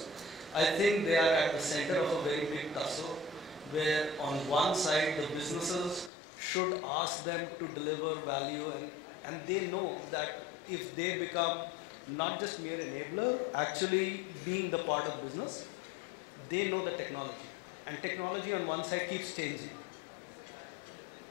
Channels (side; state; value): right; drops out; at 6.1 s